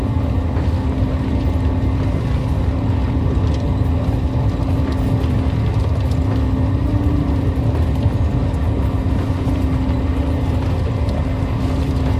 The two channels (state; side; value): identical; both; correlation 1.00